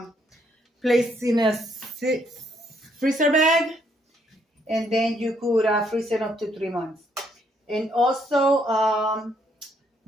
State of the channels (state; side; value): normal; both; correlation 0.71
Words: place in a freezer bag, and then you could freeze it up to 3 months. And also,